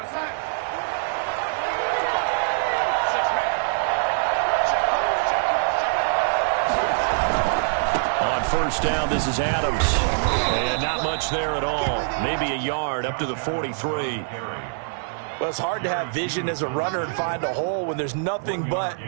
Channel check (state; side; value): silent; left; digital silence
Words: First down, this is Adams. And not much there at all. Maybe a yard up to the 43. Well, it's hard to have vision as a runner and find a hole when there's nothing but